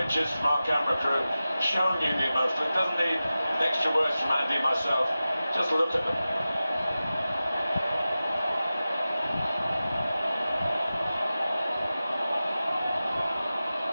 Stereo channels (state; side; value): inverted; both; correlation -0.95